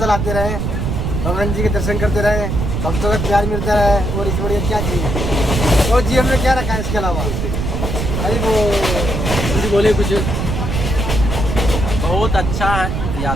आते रहे, भगवान जी के दर्शन करते रहे, भक्तों का प्यार मिलता रहे, और इस बढ़िया क्या चाहिए और जीवन में क्या रखा है इसके अलावा। अरे वो कुछ बोले कुछ। बहुत अच्छा है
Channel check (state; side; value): noise; right; rumble, 2 dB below the sound